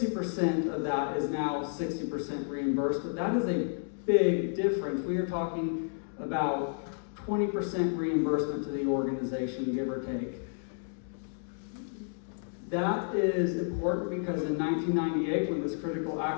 of that is now 60% reimbursed, but that is a big difference. We are talking about 20% reimbursement to the organization, give or take. That is important because in 1998, when this critical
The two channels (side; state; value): right; silent; digital silence